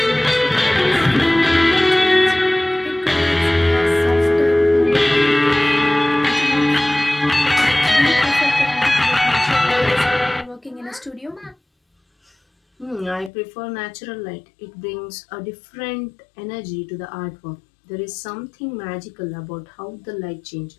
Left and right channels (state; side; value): drops out; right; at 13.3 s